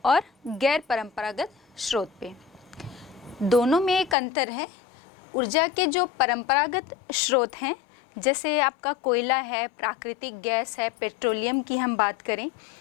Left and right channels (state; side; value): drops out; right; at 4.2 s